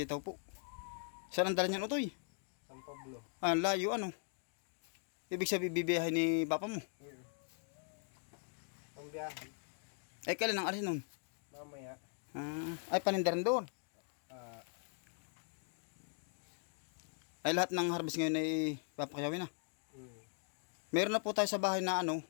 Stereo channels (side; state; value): right; silent; 51 dB below the other